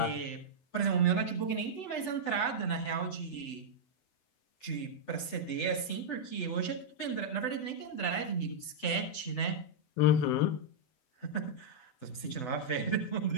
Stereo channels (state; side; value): late; right; 8.0 ms